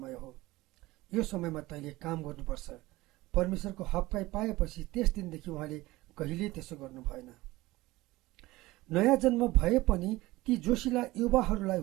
हो। यो समयमा तैँले काम गर्नुपर्छ। परमेश्वरको हप्काइ पाएपछि त्यस दिनदेखि उहाँले कहिल्यै त्यसो गर्नु भएन। नयाँ जन्म भए पनि ती जोसिला युवाहरूलाई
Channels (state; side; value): quieter; left; 19.1 dB